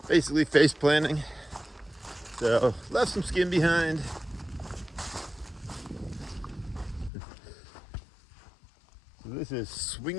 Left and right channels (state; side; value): drops out; right; at 7.1 s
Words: basically face planting. So left some skin behind. So this is